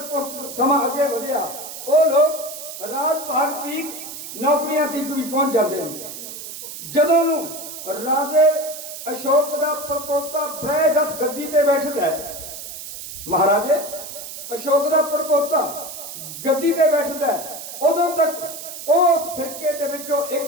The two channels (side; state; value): right; noise; hiss, 10 dB below the sound